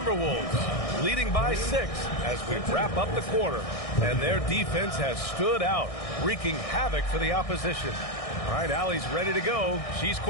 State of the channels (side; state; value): right; late; 1.6 ms